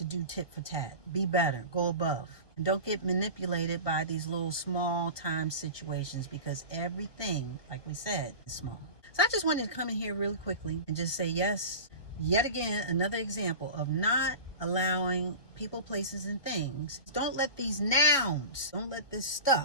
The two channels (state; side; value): late; right; 1.2 ms